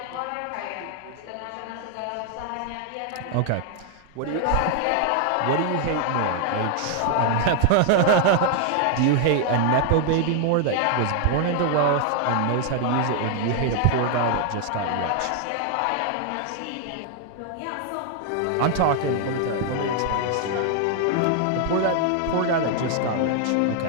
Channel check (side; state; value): both; different; correlation 0.00